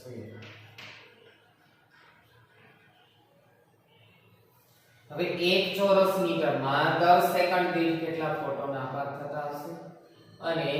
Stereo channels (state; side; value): identical; both; correlation 1.00